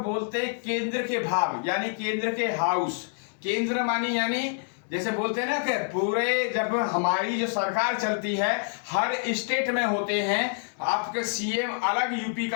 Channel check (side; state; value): right; silent; digital silence